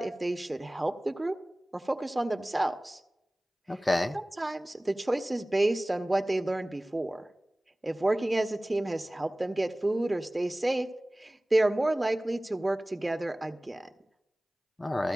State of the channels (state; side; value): normal; both; correlation 0.98